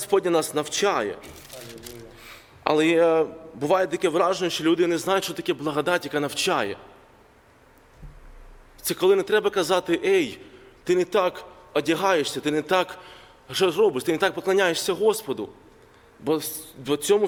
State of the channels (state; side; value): identical; both; correlation 1.00